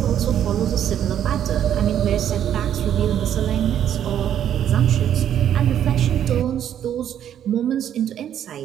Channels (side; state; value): left; quieter; 10.1 dB